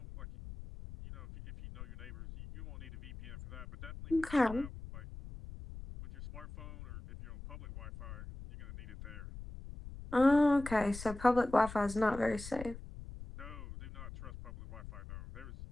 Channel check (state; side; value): noise; left; rumble, 12 dB below the sound